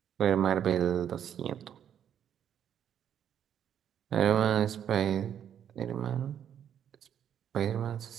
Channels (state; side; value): quieter; left; 9.3 dB